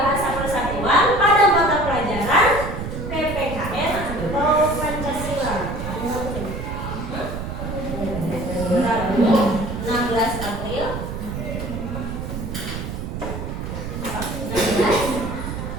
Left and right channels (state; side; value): noise; right; rumble, 6 dB below the sound